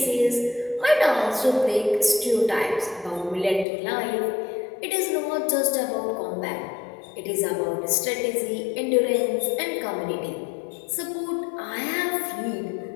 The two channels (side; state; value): right; drops out; at 3.7 s